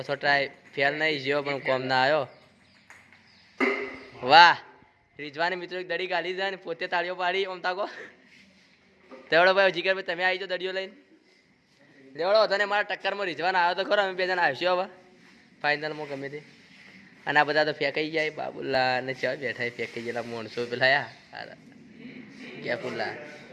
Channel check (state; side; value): identical; both; correlation 1.00